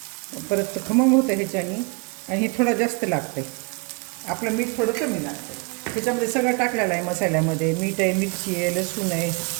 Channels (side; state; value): left; quieter; 33.2 dB